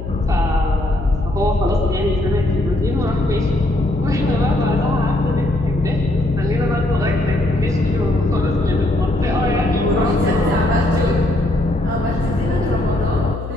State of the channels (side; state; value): left; noise; hum, 9 dB below the sound